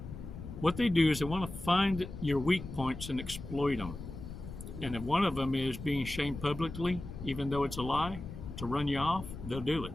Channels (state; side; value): noise; left; rumble, 10 dB below the sound